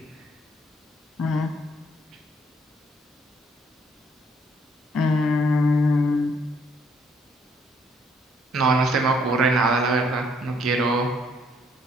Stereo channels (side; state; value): both; normal; correlation 0.67